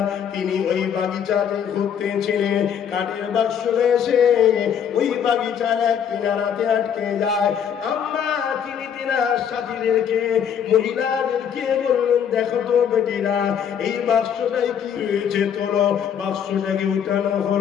তিনি ওই বাগিচাতে ঘুরতেছিলেন। কাঠের বাক্স এসে ওই বাগিচার এক কিনারাতে আটকে যায়। আম্মা তিনি তিনার সাথীদেরকে, মহিলাদেরকে বললেন, দেখো তো বেটিরা, এই বাক্সটাই কি হয়েছে, তোলো। বাক্সটাকে উঠানো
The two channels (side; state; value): right; quieter; 8.2 dB